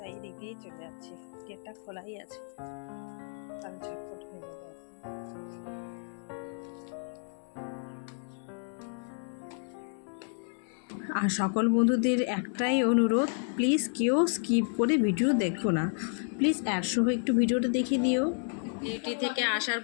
এদিক দিয়েই চলে যাচ্ছি। গেটটা খোলাই আছে, তাহলে ঝটপট হয়ে যাবে। আর সকল বন্ধুদের একটাই অনুরোধ, প্লিজ কেউ স্কিপ করে ভিডিও দেখো না, প্লিজ অ্যাডসহ একটু ভিডিওটা দেখে দিও। ডিউটি থেকে আসার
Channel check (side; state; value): right; silent; 57 dB below the other